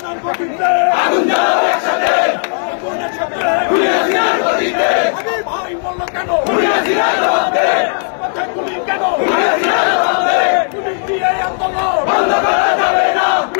গতিতে আগুন জ্বালো একসাথে আগুনের সাথে হাসিনার গতিতে আমার ভাই বলল কেন হাসিনার জবাবে মাথায় গুলি কেন হাসিনার জবাবে পুলিশ দিয়ে আন্দোলন বন্ধ করা যাবে না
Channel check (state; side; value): silent; right; 59 dB below the other